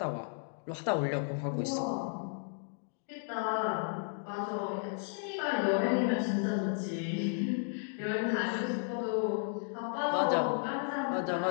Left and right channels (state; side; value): silent; right; 55 dB below the other